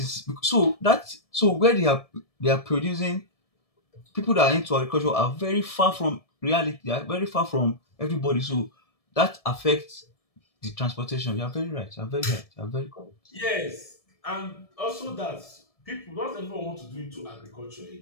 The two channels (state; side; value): late; right; 1.7 ms